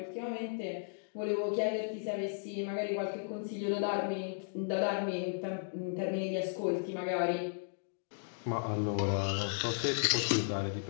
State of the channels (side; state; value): right; silent; digital silence